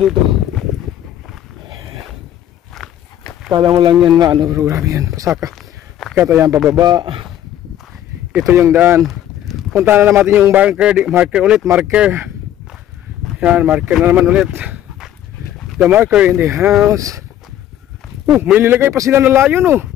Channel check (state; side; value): quieter; right; 11.5 dB